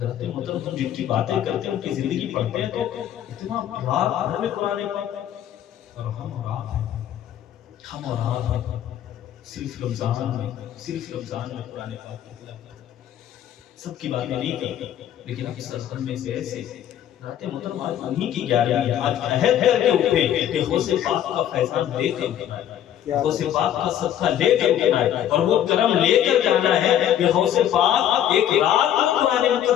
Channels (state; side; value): quieter; right; 10.8 dB